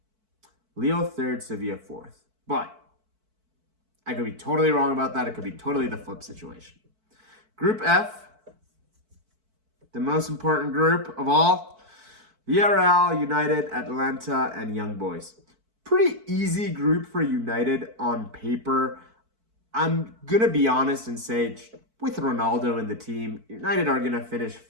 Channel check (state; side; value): late; left; 4.5 ms